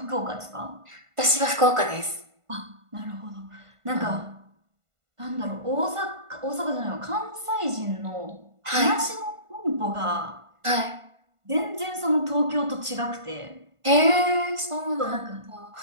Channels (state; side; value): late; left; 1.5 ms